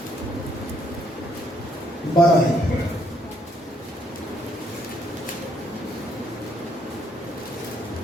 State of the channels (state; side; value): normal; both; correlation 0.70